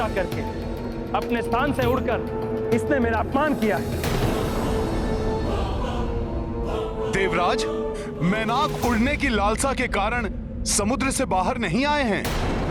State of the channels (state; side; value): identical; both; correlation 1.00